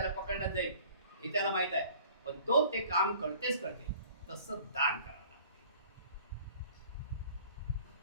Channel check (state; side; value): inverted; both; correlation -0.50